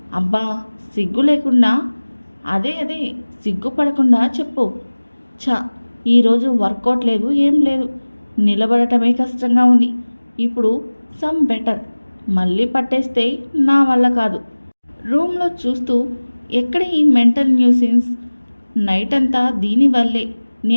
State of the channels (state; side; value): inverted; both; correlation -1.00